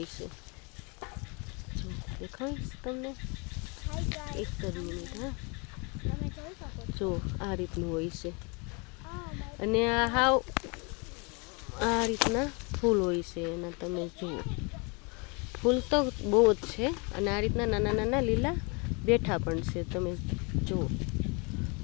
છે। જો દેખાડીશ તમને, એક જ મિનિટ। હા, જો આ રીતનું હોય છે, અને આ હાવ આ રીતના ફૂલ હોય છે એના, તમે જુઓ, ફૂલ તો બહુ જ છે, અને આ રીતના નાના નાના લીલા બેઠા પણ છે, તમે જુઓ,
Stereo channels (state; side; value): quieter; right; 31.1 dB